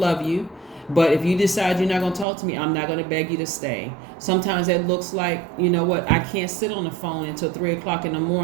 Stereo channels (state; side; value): drops out; left; at 2.2 s